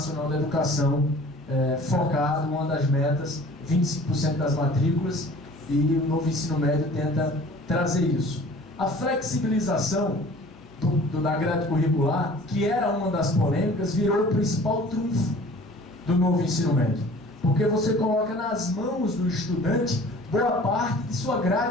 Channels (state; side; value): normal; both; correlation 0.47